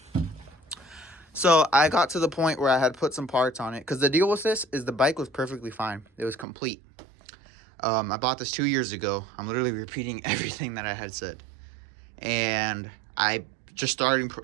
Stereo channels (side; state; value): left; drops out; at 6.5 s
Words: So I got to the point where I had put some parts on it, because the deal with this is the bike was perfectly fine. It was complete. I bought this 2 years ago. I'm literally repeating everything that I had said. And I just started